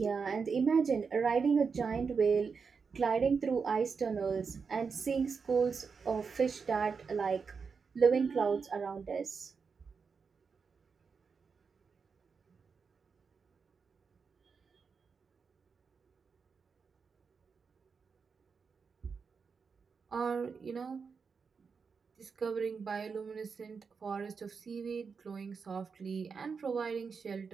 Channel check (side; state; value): left; quieter; 5.5 dB